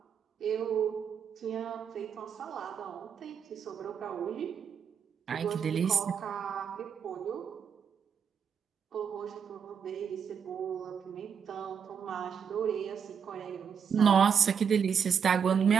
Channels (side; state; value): left; quieter; 7.1 dB